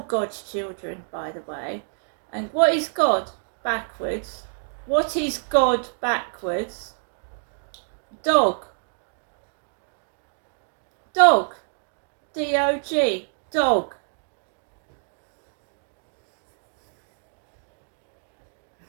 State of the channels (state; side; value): silent; left; digital silence